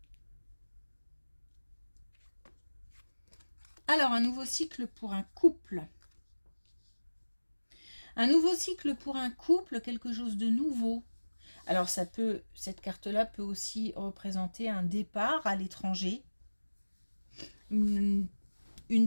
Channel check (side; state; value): both; inverted; correlation -1.00